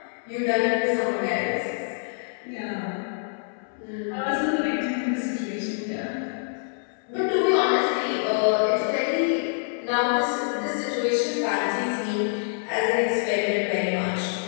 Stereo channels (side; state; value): right; silent; 61 dB below the other